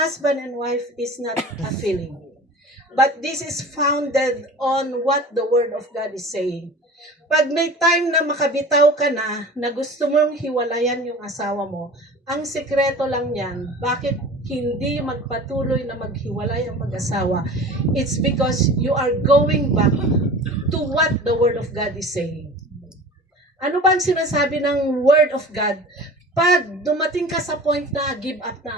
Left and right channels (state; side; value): normal; both; correlation 0.39